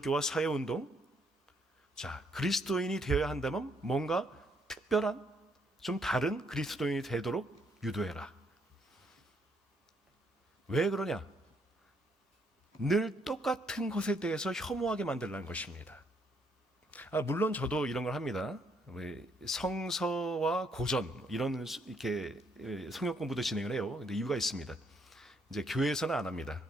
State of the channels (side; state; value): both; normal; correlation 0.71